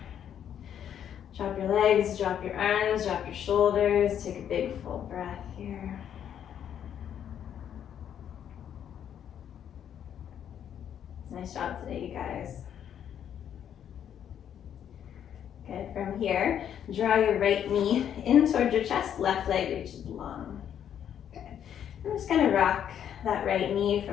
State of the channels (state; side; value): quieter; right; 9.4 dB